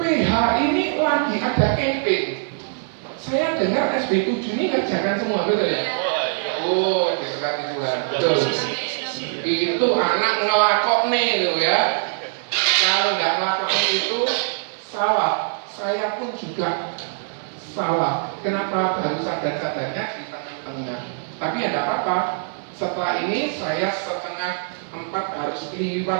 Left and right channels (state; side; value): silent; left; 62 dB below the other